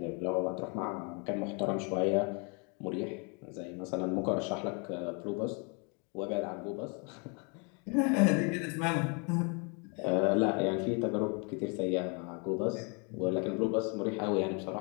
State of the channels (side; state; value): right; quieter; 34.8 dB